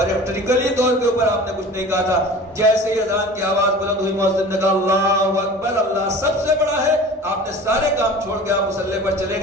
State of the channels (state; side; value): normal; both; correlation 0.40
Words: طور کے اوپر آپ نے کچھ نہیں کہا تھا. جیسے ہی اذان کی آواز بلند ہوئی، مؤذن نے کہا اللہ اکبر، اللہ سب سے بڑا ہے. آپ نے سارے کام چھوڑ کے آپ مصلی پر چلے